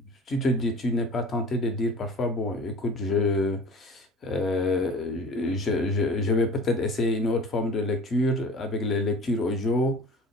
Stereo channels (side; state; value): both; normal; correlation 0.40